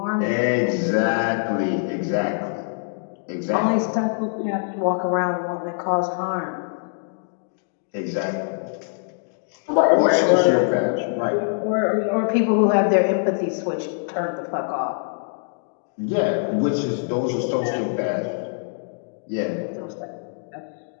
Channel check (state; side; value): silent; right; digital silence